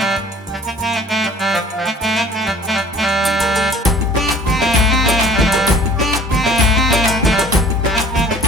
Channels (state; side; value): normal; both; correlation 0.51